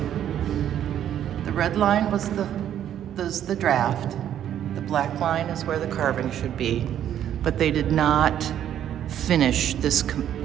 the red line was the draft. The black line is where the carving should be. But they did not finish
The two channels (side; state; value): left; quieter; 10.5 dB